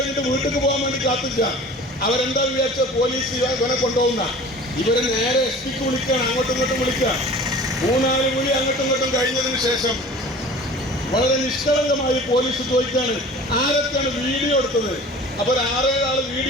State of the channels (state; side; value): normal; both; correlation 0.42